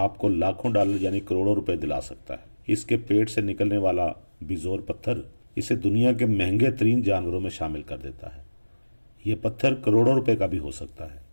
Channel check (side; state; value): both; inverted; correlation -1.00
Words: लाखों डॉलर यानी करोड़ों रुपए दिला सकता है। इसके पेट से निकलने वाला बिजोर पत्थर इसे दुनिया के महंगे तरीन जानवरों में शामिल कर देता है। ये पत्थर करोड़ों रुपए का भी हो सकता है।